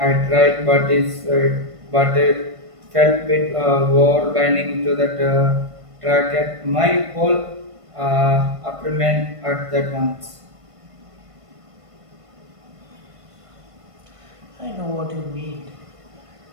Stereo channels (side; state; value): left; late; 1.5 ms